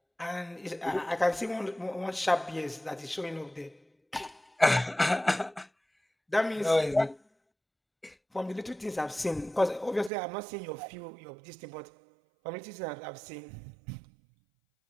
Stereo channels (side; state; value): left; drops out; at 10.1 s